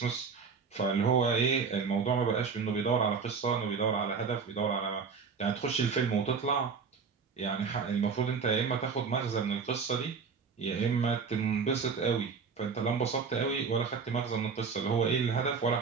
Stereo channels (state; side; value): quieter; left; 5.5 dB